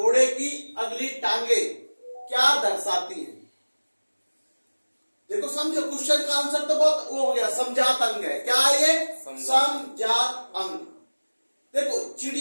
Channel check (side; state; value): both; inverted; correlation -1.00